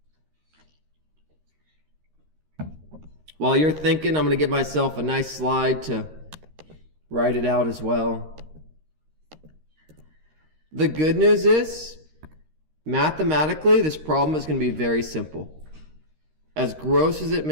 While you're thinking, I'm going to give myself a nice slide to write it out as well. The good news is, mathematically, this problem is going to be very simple. As gross as it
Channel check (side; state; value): left; late; 13 ms